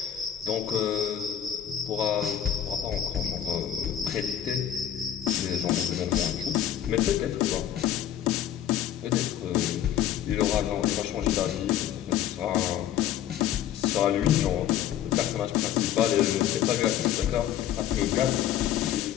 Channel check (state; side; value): quieter; right; 10.7 dB